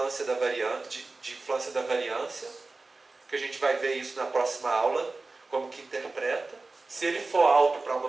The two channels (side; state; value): left; quieter; 3.5 dB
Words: da variância, que a gente vai ver isso na próxima aula, como que interpreta. Se ele for alto para uma